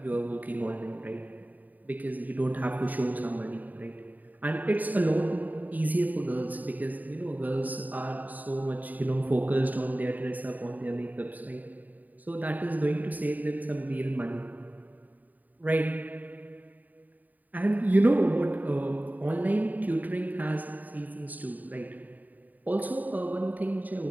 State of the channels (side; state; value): left; late; 0.082 ms